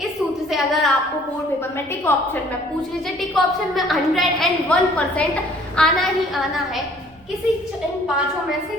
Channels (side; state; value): right; noise; rumble, 29 dB below the sound